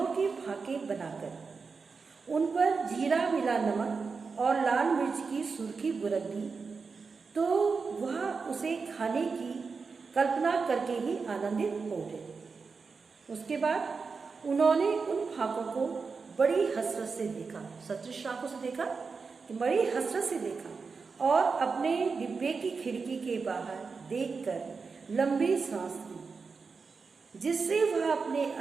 के फाके बनाकर उन पर जीरा मिला नमक और लाल मिर्च की सुर्खी बुरक दी तो वह उसे खाने की कल्पना करके ही आनंदित हो उठे। उसके बाद उन्होंने उन फाकों को बड़ी हसरत से देखा, सतृष्ण आंखों से देखा, बड़ी हसरत से देखा और अपने डिब्बे की खिड़की के बाहर देखकर लंबी सांस ली, जिससे वह अपने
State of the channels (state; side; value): quieter; left; 4.8 dB